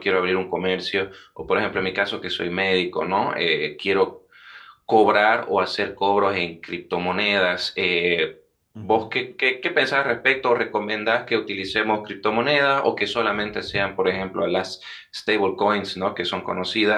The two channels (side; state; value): both; identical; correlation 1.00